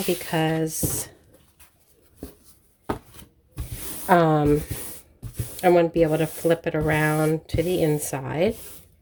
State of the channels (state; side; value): identical; both; correlation 1.00